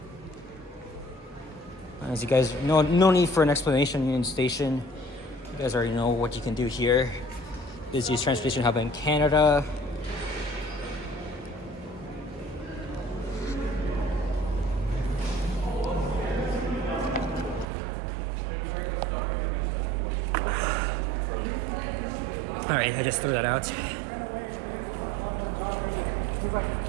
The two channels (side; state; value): left; drops out; at 17.7 s